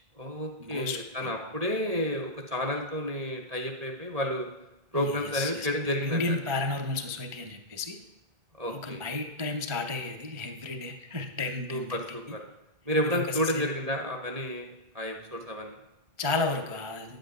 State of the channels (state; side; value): late; left; 1.4 ms